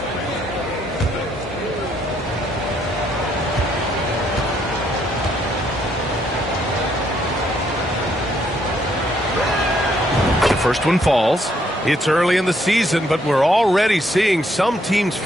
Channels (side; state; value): both; normal; correlation 0.71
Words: First one falls. It's early in the season, but we're already seeing some teams